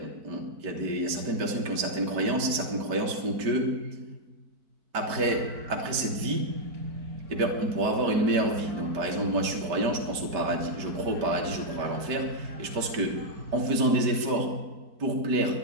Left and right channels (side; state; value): left; late; 4.5 ms